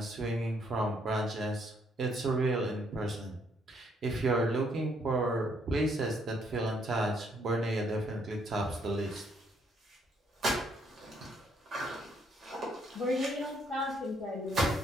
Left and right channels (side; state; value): both; normal; correlation 0.70